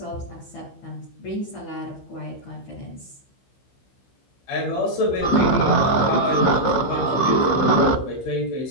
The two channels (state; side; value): late; right; 15 ms